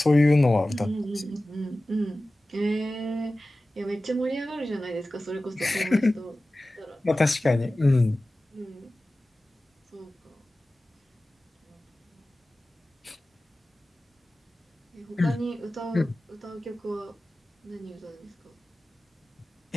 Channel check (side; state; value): both; normal; correlation 0.96